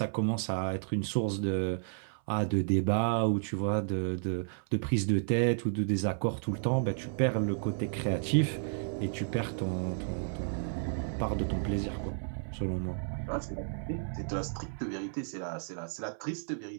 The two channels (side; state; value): left; silent; 55 dB below the other